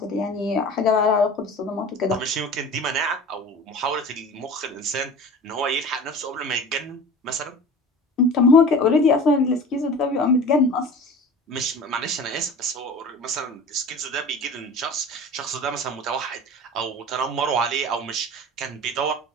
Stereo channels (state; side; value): normal; both; correlation 0.38